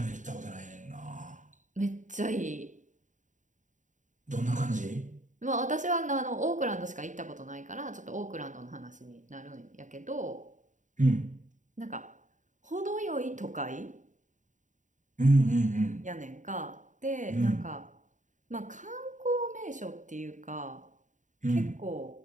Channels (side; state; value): left; late; 0.36 ms